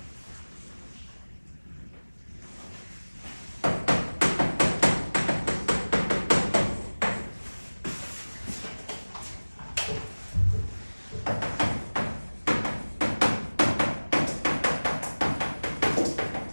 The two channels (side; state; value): both; inverted; correlation -1.00